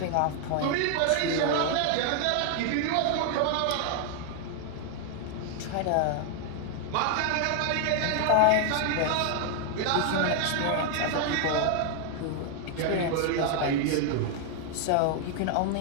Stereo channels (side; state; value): both; different; correlation 0.00